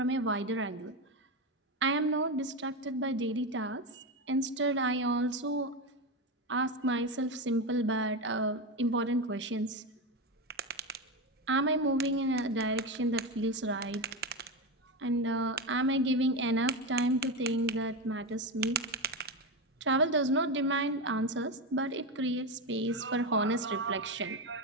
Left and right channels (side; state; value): both; normal; correlation 0.15